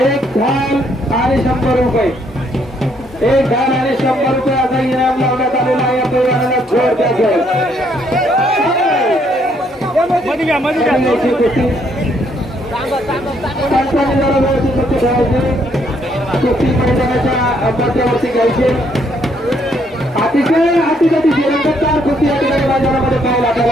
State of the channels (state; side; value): normal; both; correlation 0.70